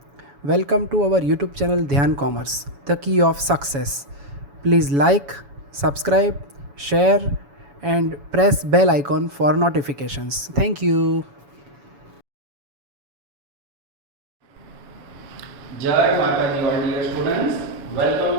Welcome to our YouTube channel Dhyan Commerce, the key of success. Please like, subscribe, share and press bell icon for notifications. Thank you. जय माता दी all dear students,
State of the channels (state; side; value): late; left; 7.1 ms